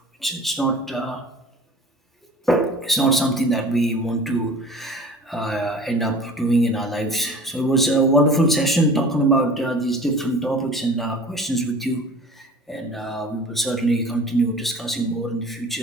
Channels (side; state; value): both; normal; correlation 0.43